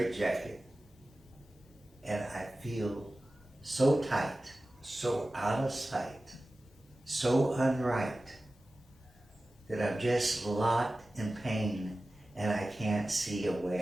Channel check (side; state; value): both; normal; correlation 0.96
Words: and I feel so tight, so out of sight, so unright, that I'm just locked in pain and I can't see a way